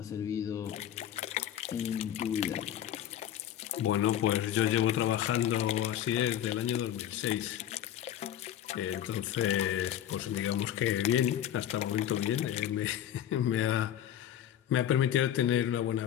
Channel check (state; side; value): quieter; right; 10.9 dB